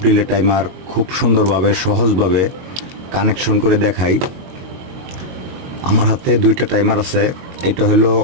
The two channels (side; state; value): left; late; 22 ms